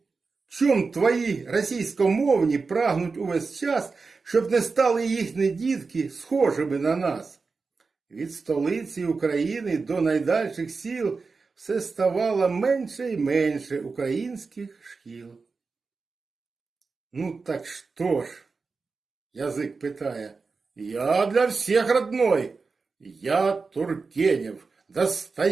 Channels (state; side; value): quieter; left; 4.4 dB